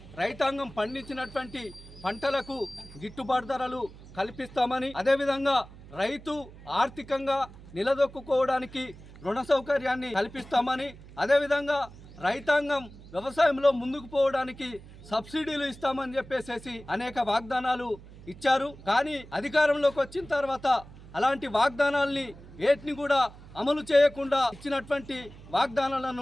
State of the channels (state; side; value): noise; right; hum, 18 dB below the sound